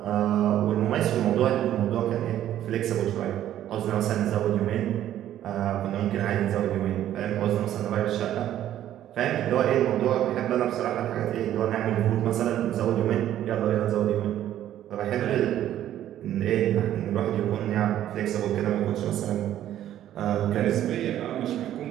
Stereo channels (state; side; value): quieter; left; 11.9 dB